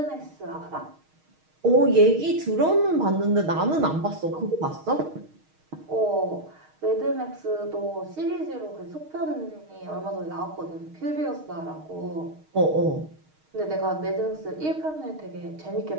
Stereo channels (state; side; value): late; left; 6.4 ms